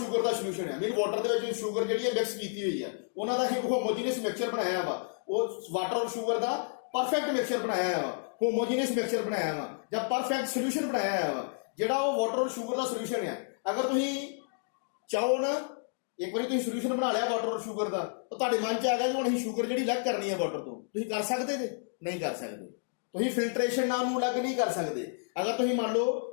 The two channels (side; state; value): right; silent; digital silence